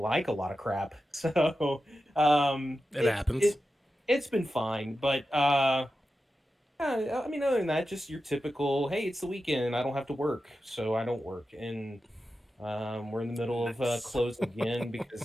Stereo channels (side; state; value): both; normal; correlation 0.91